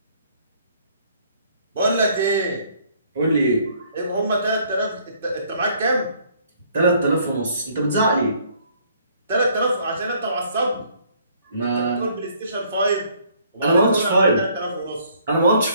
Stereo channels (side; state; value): both; inverted; correlation -0.62